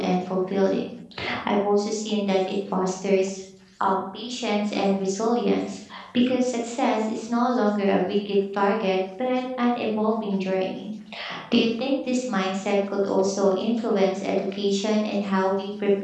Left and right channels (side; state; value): both; identical; correlation 1.00